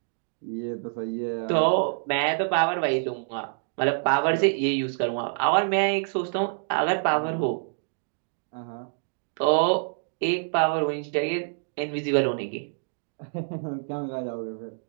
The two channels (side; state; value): left; silent; digital silence